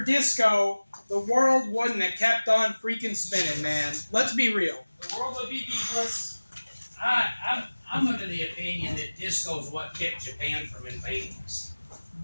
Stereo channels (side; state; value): both; inverted; correlation -1.00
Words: disco, the world wouldn't have kept on freaking spinning, man. Let's be real. The world would be beefless. I'm under the opinion that disco is what kept Japan from invading us.